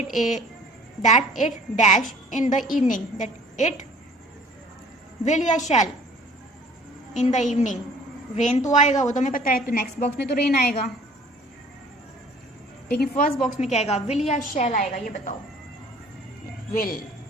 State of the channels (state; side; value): normal; both; correlation 0.51